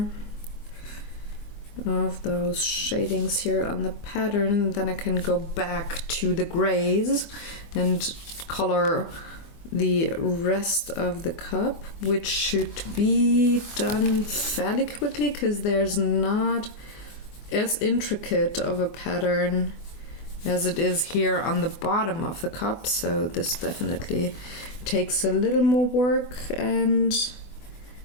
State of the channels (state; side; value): late; right; 24 ms